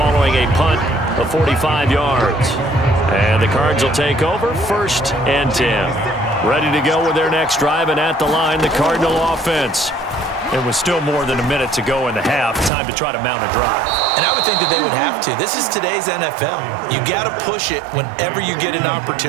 a punt of 45 yards. And the Cards will take over 1st and 10. Ready to go with their next drive, and at the line, the Cardinal offense. It was still more than a minute to go in the half. Time to try to mount a drive. And I would think that they would have to. This is today's NFL. You got to push it whenever you get an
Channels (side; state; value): left; drops out; at 12.7 s